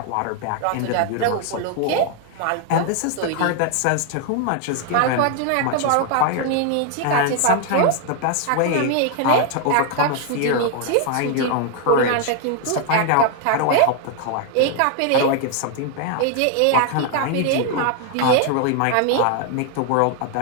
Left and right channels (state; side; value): different; both; correlation 0.00